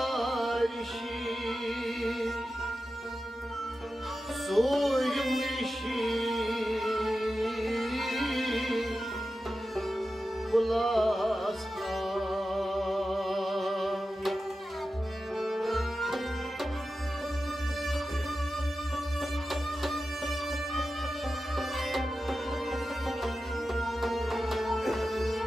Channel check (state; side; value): normal; both; correlation 0.92